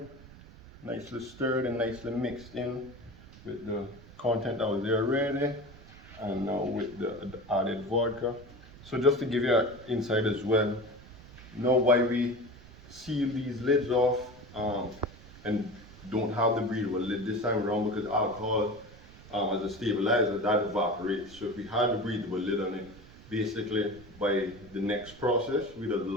nicely stirred and nicely mixed in with the content that was there already, and now with the added vodka. So just to give you an insight as well, know why we seal these lids off and don't have the breathable lid this time around, because alcohol as a stabilizer, that evaporates. So if we had the breathable lid on it, basically by the next process we'd have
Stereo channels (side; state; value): right; noise; rumble, 20 dB below the sound